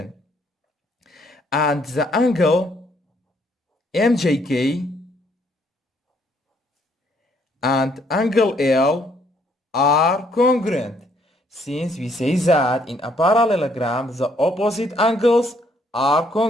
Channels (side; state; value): both; normal; correlation 0.68